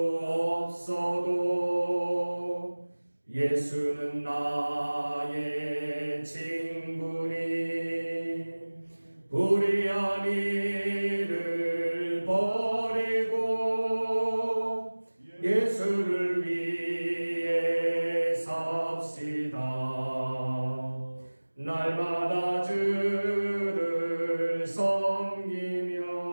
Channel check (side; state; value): both; inverted; correlation -1.00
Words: 없어도 예수는 나의 친구니 불의한 일을 버리고 예수를 위해 삽시다. 날마다 주를 섬기며